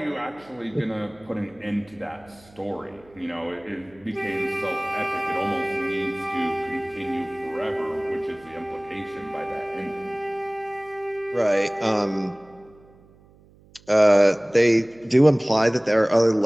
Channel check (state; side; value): noise; right; hum, 27 dB below the sound